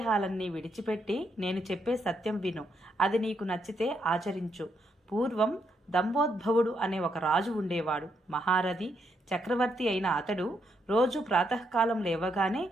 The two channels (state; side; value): normal; both; correlation 0.78